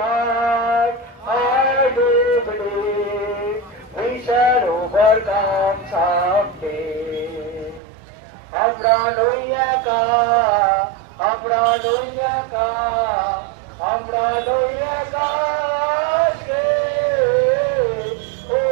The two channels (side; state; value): left; drops out; at 7.8 s